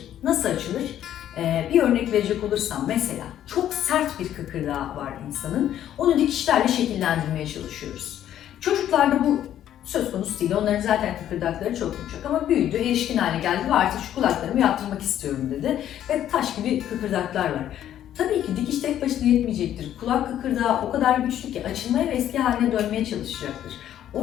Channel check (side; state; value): right; quieter; 11.2 dB